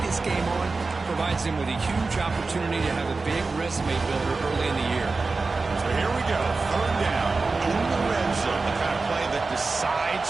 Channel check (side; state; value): left; quieter; 3.9 dB